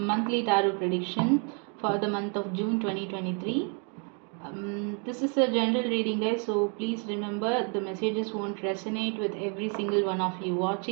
tarot prediction for the month of June 2023. This is a general reading, guys, so please remember the messages won't resonate with every single one of you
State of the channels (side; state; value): left; quieter; 38.4 dB